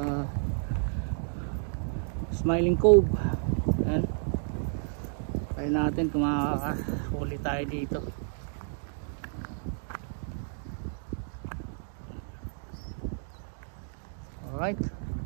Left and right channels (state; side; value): silent; left; digital silence